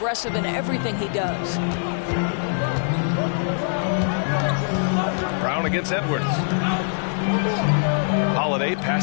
in everything he does. Brown against Edwards. Holiday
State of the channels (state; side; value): silent; right; digital silence